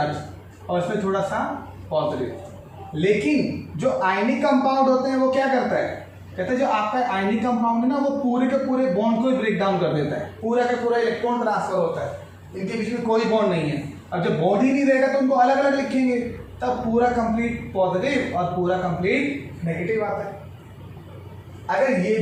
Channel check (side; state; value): both; identical; correlation 1.00